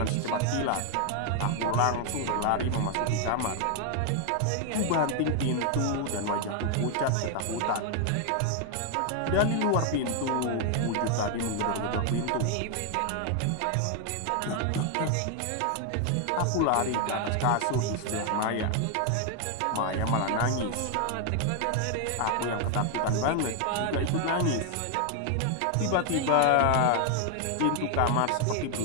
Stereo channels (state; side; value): different; both; correlation 0.01